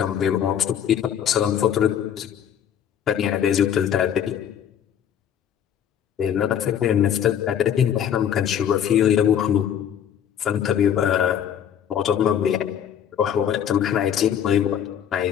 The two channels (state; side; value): quieter; right; 9.2 dB